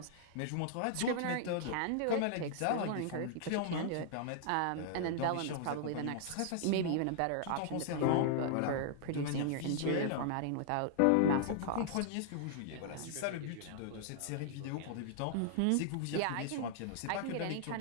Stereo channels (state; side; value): different; both; correlation -0.01